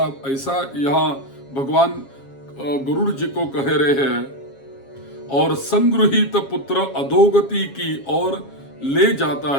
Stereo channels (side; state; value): right; late; 7.3 ms